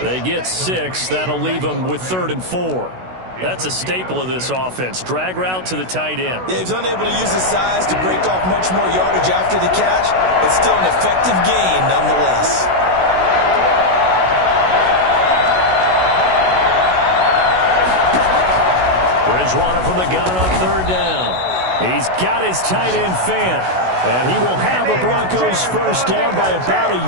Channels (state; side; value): late; left; 16 ms